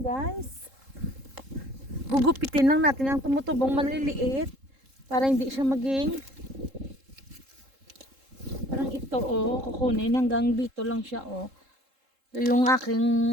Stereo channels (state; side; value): late; left; 3.7 ms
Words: Gugupitin lang natin ang tumutubong maliliit para hindi siya maging parang ito, kukunin hanggang dito lang siya, Ito yung